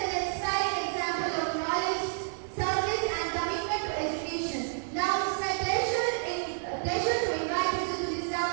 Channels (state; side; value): silent; left; digital silence